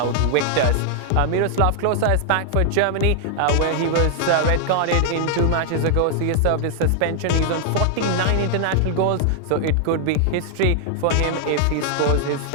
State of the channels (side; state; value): both; different; correlation 0.00